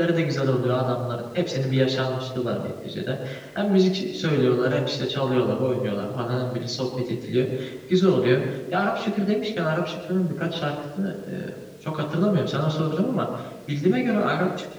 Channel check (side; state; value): both; identical; correlation 1.00